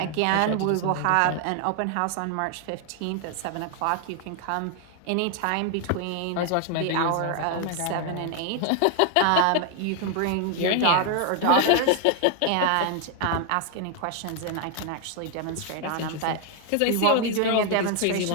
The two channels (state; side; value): different; both; correlation 0.00